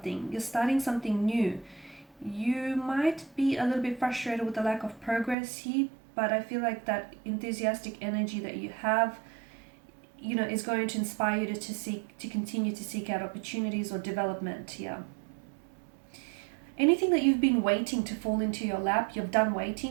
You're starting something new. You might be a little bit frustrated with the lack of progress here, but I feel like that enthusiastic energy that you have, you know, is going to inspire you to continue to seek out opportunities or development here. Anything that you've been waiting to fall into your lap, you've done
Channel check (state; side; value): drops out; left; at 5.4 s